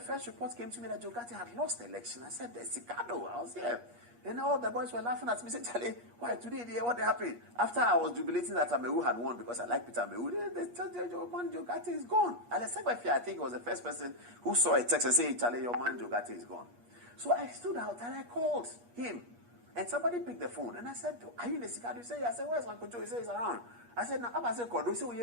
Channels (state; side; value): late; left; 8.4 ms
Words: report came to me that Joe GHARTEY had lost the election. I said, the Sikado, I was here. And all the boys were laughing at me, saying, Charlie, why today, what happened? After I was jubilating that Amewu had won because I like Peter Amewu, they said, your man Joe GHARTEY is gone. And I think was the first person who saw a text and said, Charlie, your man Joe GHARTEY is gone. So I stood out and I called him. And somebody picked the phone. And I said, are you in the Sikado? He said, yeah. I said, where's Uncle Joe? He said, he's around. I said, now, I said, Kodo. He said,